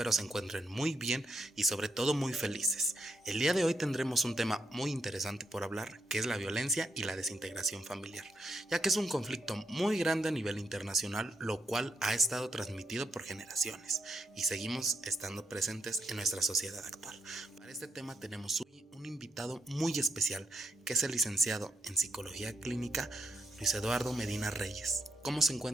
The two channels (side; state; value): both; normal; correlation 0.79